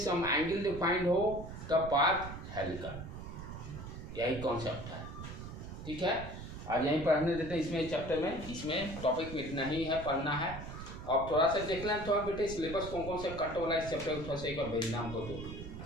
एंगल डिफाइंड हो तब पाथ हेलिकल। यही कॉन्सेप्ट है, ठीक है। आज यहीं पढ़ने देते हैं इसमें चैप्टर में, इसमें टॉपिक में इतना ही है, पढ़ना है। अब थोड़ा सा देख लें थोड़ा बेटे सिलेबस कौन कौन से कट वाला इस चैप्टर को थोड़ा सा एक बार भेजना हमको, तो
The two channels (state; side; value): noise; right; rumble, 10 dB below the sound